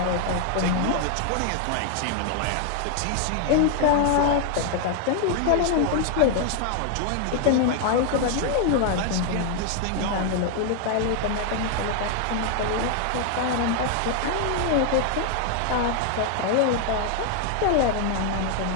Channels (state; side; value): different; both; correlation 0.00